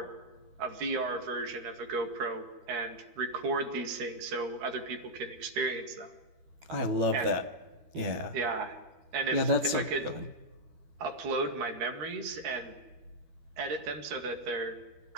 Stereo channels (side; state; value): left; late; 13 ms